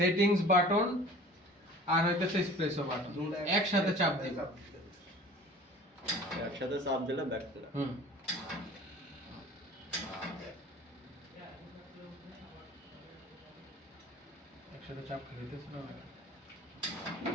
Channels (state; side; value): normal; both; correlation 0.44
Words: বাটন আর হইতেছে এসপ্রেসো বাটন একসাথে চাপ দিব। একসাথে চাপ দিলে ব্যাক ফ্লাশ। একসাথে চাপ খেতেছে না,